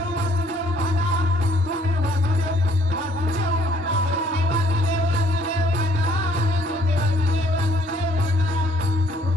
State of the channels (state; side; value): normal; both; correlation 0.63